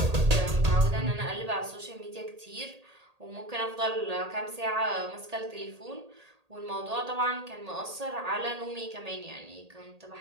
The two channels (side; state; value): left; late; 1.8 ms